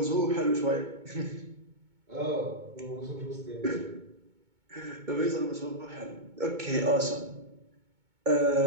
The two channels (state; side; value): late; left; 2.2 ms